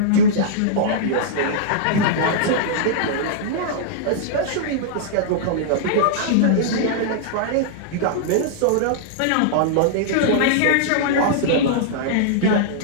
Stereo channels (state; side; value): different; both; correlation -0.02